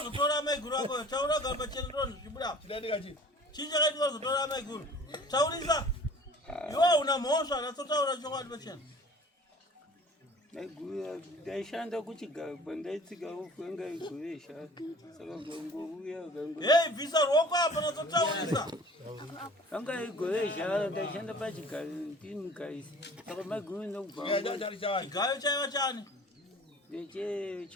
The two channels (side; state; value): both; normal; correlation 0.47